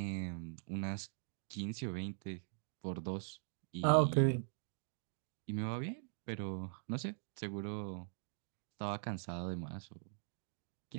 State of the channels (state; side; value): silent; left; digital silence